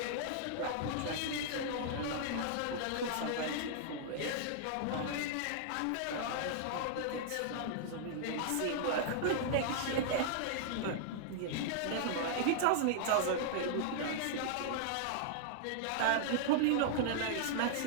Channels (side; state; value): both; different; correlation -0.01